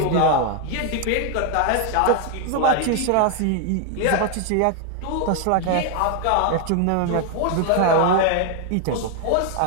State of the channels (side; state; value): both; different; correlation 0.00